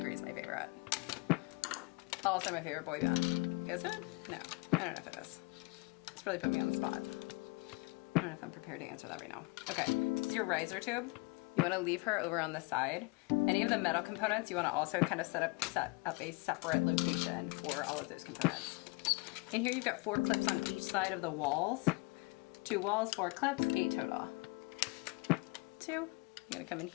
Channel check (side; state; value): right; quieter; 26.4 dB